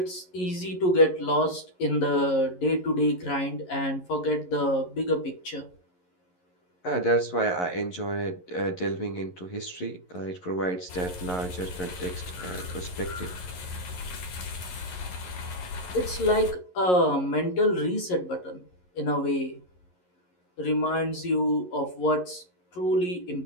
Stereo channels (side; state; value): right; late; 11 ms